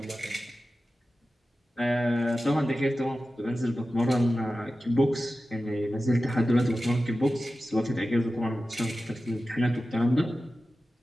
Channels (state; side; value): normal; both; correlation 0.94